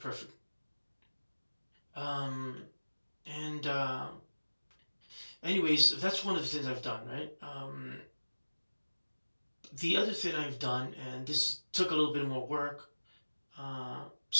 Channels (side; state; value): both; inverted; correlation -1.00